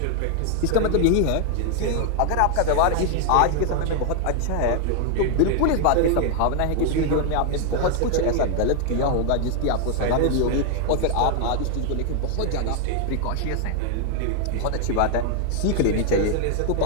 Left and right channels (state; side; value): different; both; correlation 0.00